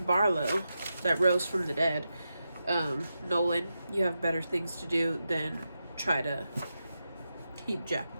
Barlow, that rose from the dead. Nolan, you have better things to do than try to keep Jack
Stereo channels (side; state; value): both; inverted; correlation -0.88